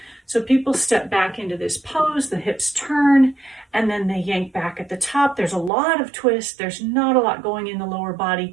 So people step back into this pose, the hips turn, and then they yank back at the top. There's a lot of twist. There's not a lot going in the lower body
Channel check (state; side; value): drops out; left; at 5.7 s